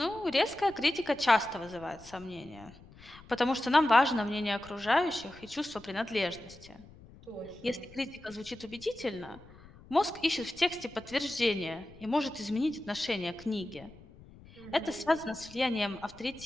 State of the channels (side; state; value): left; noise; rumble, 21 dB below the sound